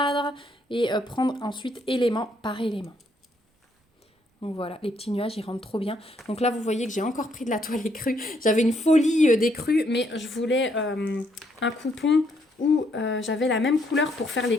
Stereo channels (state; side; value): normal; both; correlation 0.72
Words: et prendre ensuite élément par élément. Donc voilà, les petits nuages, ils rentrent trop bien. Donc là, vous voyez que j'ai encore pris de la toile écrue. J'avais une folie d'écrue, mais je voulais un coupon où j'avais la même couleur pour faire les